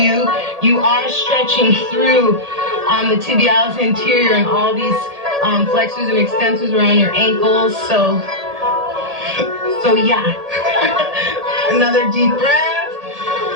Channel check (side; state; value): left; late; 1.8 ms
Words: You are stretching through the tibialis anterior and all these flexors and extensors around your ankles. So yeah. Another deep breath.